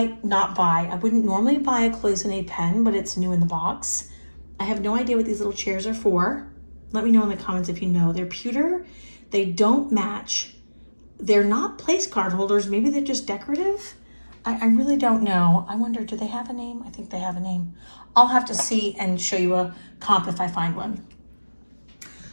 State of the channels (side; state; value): both; inverted; correlation -1.00